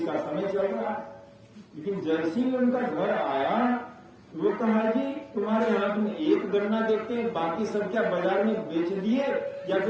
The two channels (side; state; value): both; identical; correlation 1.00